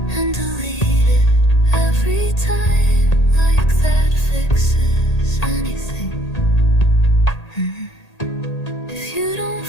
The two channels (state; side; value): late; right; 1.8 ms